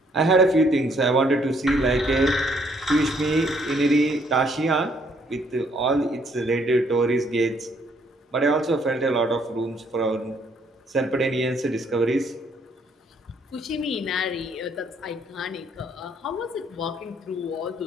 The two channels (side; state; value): both; normal; correlation 0.67